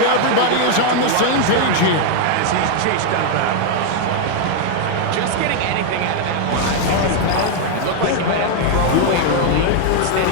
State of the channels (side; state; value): both; different; correlation 0.00